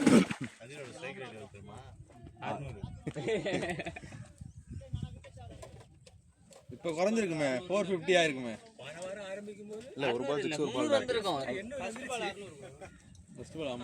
அதோட ஸ்ட்ரைக் ரேட் எவ்வளவு தெரியுமா? 600. இப்போ குறைஞ்சிருக்குமே, 450 ஆயிருக்குமே. போன வாரம் ஆரம்பிக்கும் போது இல்ல ஒரு பால் 6 ஒரு பால் வந்திருக்கும். ஃபர்ஸ்ட் பால் 600 ஃபர்ஸ்ட் பால்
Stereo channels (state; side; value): identical; both; correlation 1.00